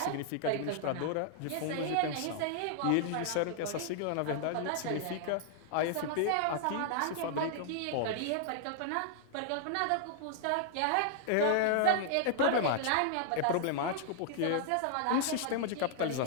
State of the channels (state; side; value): different; both; correlation -0.01